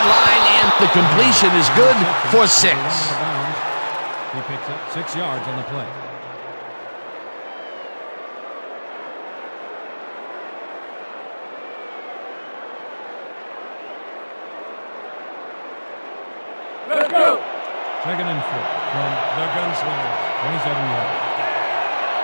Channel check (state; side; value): inverted; both; correlation -1.00